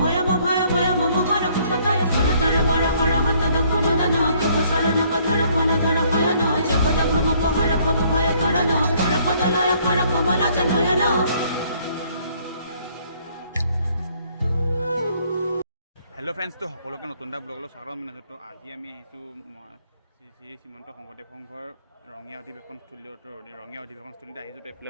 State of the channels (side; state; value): both; inverted; correlation -0.64